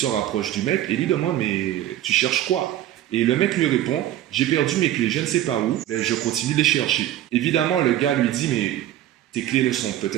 rapproche du mec et lui demande « Mais tu cherches quoi ?» Et le mec lui répond « J'ai perdu mes clés, je ne sais pas où, mais je continue de les chercher. » Évidemment, le gars lui dit « Mais tes clés ne sont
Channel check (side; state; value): left; quieter; 12.7 dB